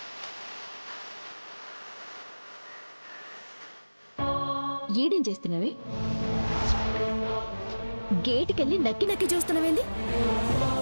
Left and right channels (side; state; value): both; inverted; correlation -1.00